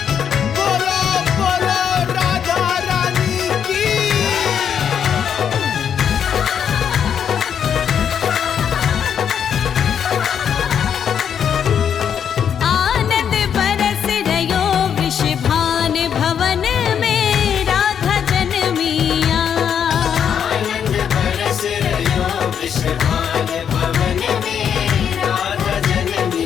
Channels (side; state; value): right; quieter; 8.2 dB